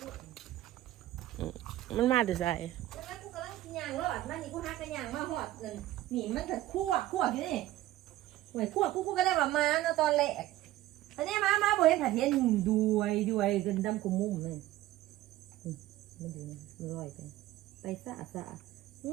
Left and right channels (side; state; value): left; quieter; 15.1 dB